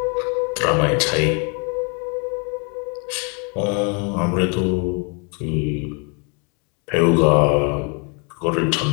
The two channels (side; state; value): right; quieter; 35.9 dB